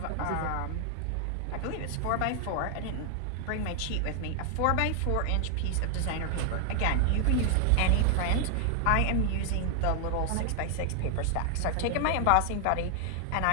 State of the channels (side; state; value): both; different; correlation 0.00